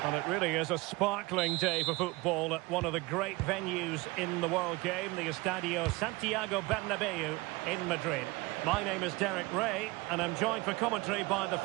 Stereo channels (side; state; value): left; quieter; 23.1 dB